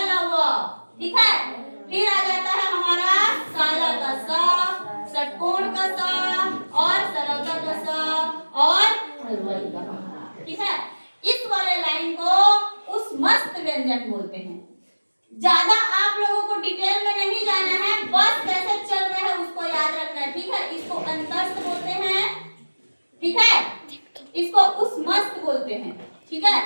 ल व, ठीक है। फिर आ जाता है हमारा काला का सा, षटकोण का सा और सरलता का सा और हलवाई का, ठीक है। इस वाले लाइन को उस मस्त व्यंजन बोलते हैं। ज्यादा आप लोगों को डिटेल में नहीं जाना है, बस कैसे चल रहे हैं उसको याद रखना है, ठीक है। इसको अंतस्थ बोलते हैं, ठीक है, इसको उस मस्त बोलते हैं, ठीक है।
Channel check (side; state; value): both; inverted; correlation -1.00